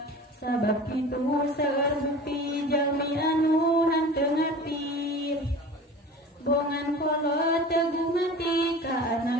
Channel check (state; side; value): normal; both; correlation 0.38